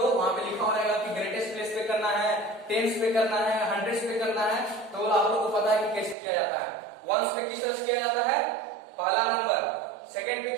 वहां पे लिखा रहेगा कि ग्रेटेस्ट प्लेस पे करना है, टेंस पे करना है, हंड्रेड्स पे करना है, तो आप लोग को पता है कि कैसे किया जाता है। वंस पे किस तरह से किया जाता है, पहला नंबर, सेकंड पे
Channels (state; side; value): drops out; left; at 6.2 s